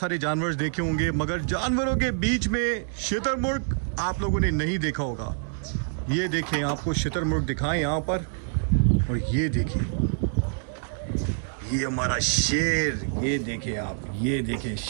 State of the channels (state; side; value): silent; left; digital silence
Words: जानवर देखे होंगे, मगर जानवरों के बीच में शुतुरमुर्ग आप लोगों ने नहीं देखा होगा। ये देखें, आपको शुतुरमुर्ग दिखाएं यहाँ पर, और ये देखें, ये हमारा शेर, ये देखें आप, ये देखें